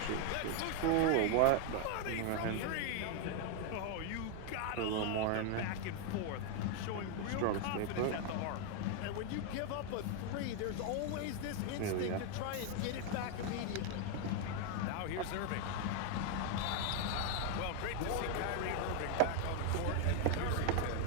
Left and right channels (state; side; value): different; both; correlation 0.01